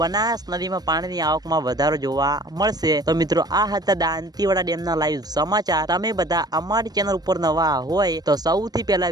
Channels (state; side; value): late; left; 0.19 ms